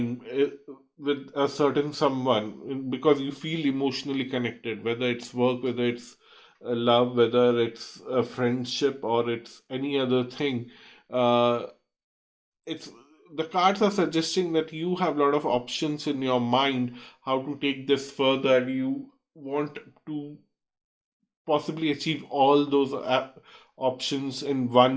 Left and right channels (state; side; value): identical; both; correlation 1.00